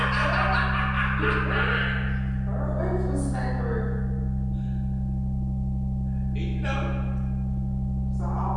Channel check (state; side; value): identical; both; correlation 1.00